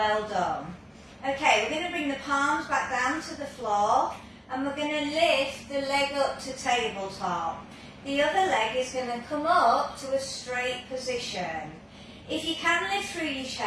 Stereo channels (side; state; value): both; identical; correlation 1.00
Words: done. Okay, we're going to bring the palms back down to the floor, and we're going to lift the leg up to tabletop. The other leg is going to come up to a straight position. If you can lift through your